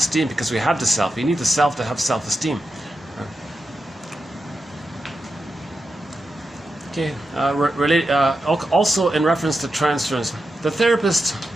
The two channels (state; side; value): normal; both; correlation 0.89